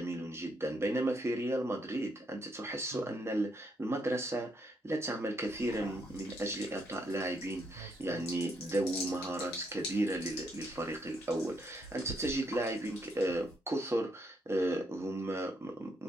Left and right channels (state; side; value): normal; both; correlation 0.75